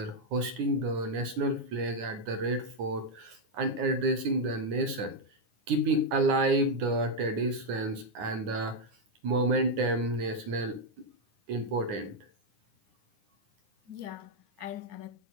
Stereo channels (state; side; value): late; left; 9.7 ms